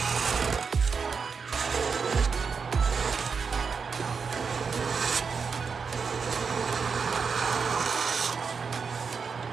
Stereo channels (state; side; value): quieter; left; 5.5 dB